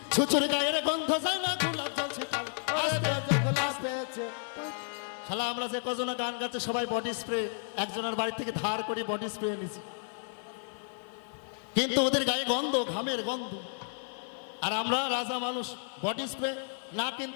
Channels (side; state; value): right; silent; 57 dB below the other